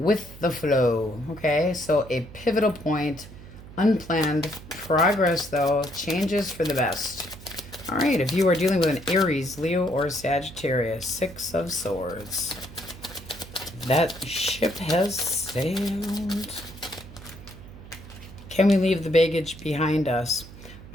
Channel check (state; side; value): noise; right; hum, 17 dB below the sound